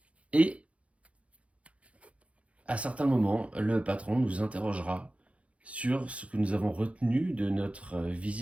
Et à certains moments, le patron nous interrogera sur ce que nous avons retenu de notre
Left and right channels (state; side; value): late; left; 0.063 ms